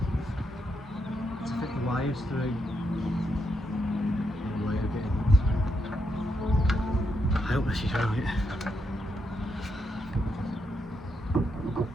To fit the wires through. I hope this is right.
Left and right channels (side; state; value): both; normal; correlation 0.81